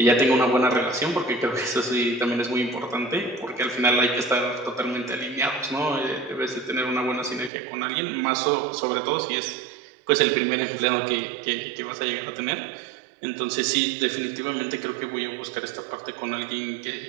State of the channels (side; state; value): left; drops out; at 7.5 s